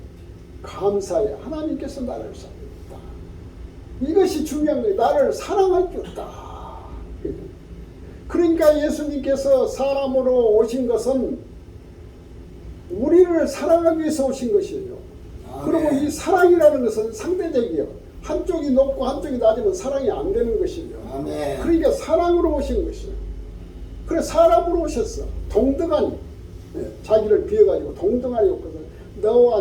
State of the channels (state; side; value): identical; both; correlation 1.00